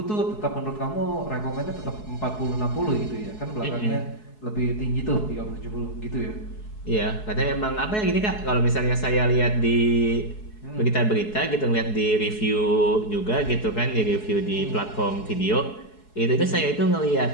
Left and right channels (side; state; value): right; late; 4.7 ms